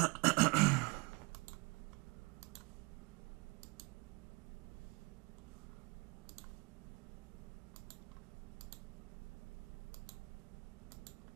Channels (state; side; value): quieter; left; 27.8 dB